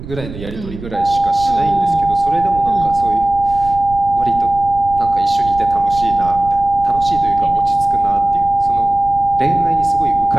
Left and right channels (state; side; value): noise; right; rumble, 13 dB below the sound